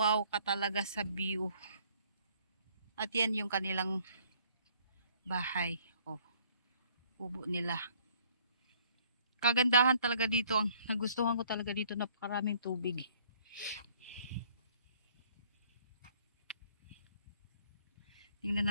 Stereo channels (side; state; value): both; inverted; correlation -0.61